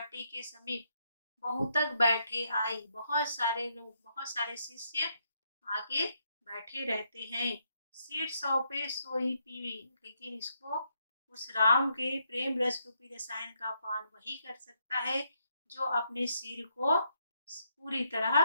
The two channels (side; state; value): both; inverted; correlation -0.76